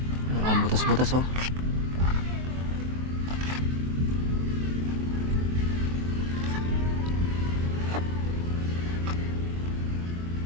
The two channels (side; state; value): left; late; 23 ms